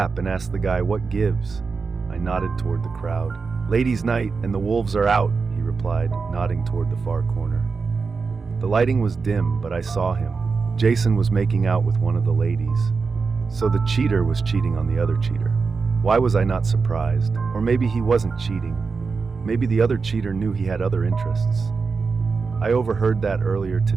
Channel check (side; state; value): left; quieter; 4.8 dB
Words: and asked the guy what gives. I nodded toward the crowd. Ladies' night and the wolves are out, he replied, nodding toward the far corner. The lighting was dim, but I saw him. Jason was making out with one of the ladies. So the cheater was cheating on the other cheater. Why was I not surprised? Or maybe he wasn't cheating. Maybe the other cheater knew he had other interests. I overheard that earlier